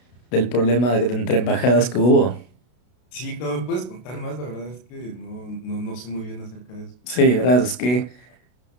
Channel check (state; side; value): late; right; 32 ms